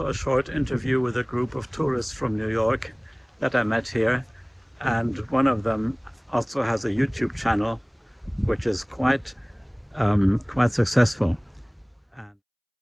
a short interview with a group of tourists from New York that I met here. And one of them also has a YouTube channel, which is quite successful.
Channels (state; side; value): identical; both; correlation 1.00